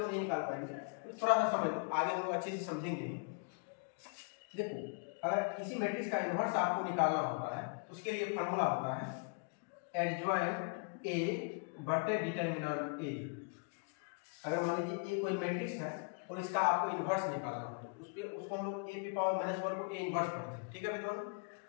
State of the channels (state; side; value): quieter; right; 38.5 dB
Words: नहीं निकाल पाएंगे, तो थोड़ा सा समझ लो, आगे हम लोग अच्छे से समझेंगे। देखो, अगर किसी मैट्रिक्स का इन्वर्स आपको निकालना होता है, तो उसके लिए फॉर्मूला होता है एडजॉइंट ए बटे डिटर्मिनेंट ए। अगर मान लीजिए ए कोई मैट्रिक्स है और इसका आपको इन्वर्स निकालना हो, तो उसको हम लोग ए की पावर -1 को ए इन्वर्स पढ़ते हैं। ठीक है विद्वान,